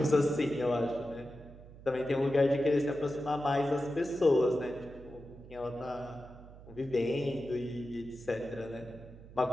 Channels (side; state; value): right; noise; hum, 18 dB below the sound